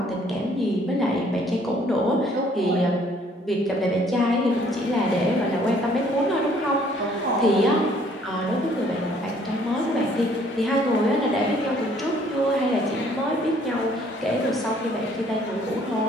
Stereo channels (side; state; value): both; normal; correlation 0.61